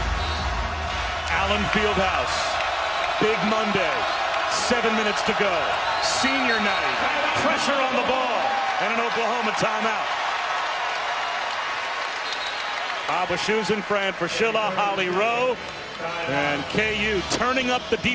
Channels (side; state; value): both; identical; correlation 1.00